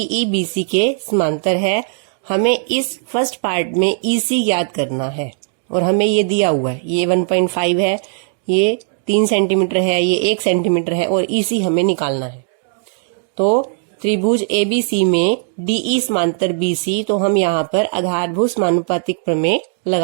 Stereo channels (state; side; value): silent; left; 67 dB below the other